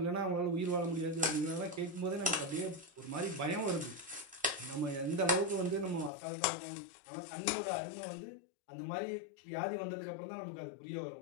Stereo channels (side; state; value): right; drops out; at 6.1 s